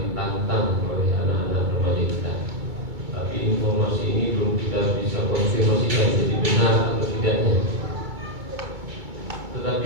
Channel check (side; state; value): left; late; 2.2 ms